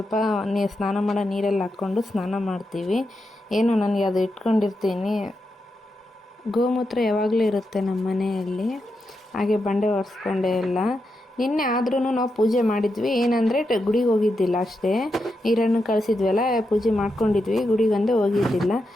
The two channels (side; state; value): both; normal; correlation 0.86